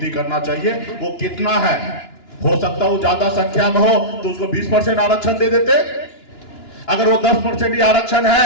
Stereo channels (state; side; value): late; right; 2.9 ms